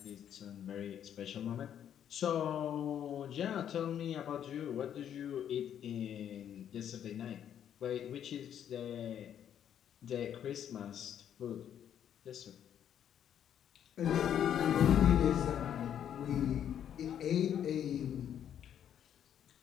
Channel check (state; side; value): quieter; right; 9.6 dB